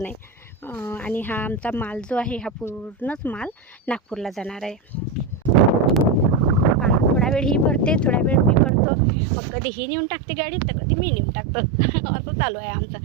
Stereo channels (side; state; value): left; drops out; at 8.7 s